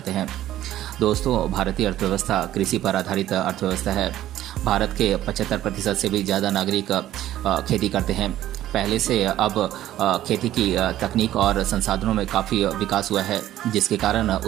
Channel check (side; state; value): left; quieter; 13.3 dB